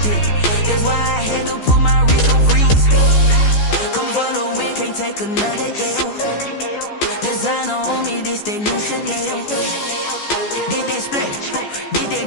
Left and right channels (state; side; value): late; right; 14 ms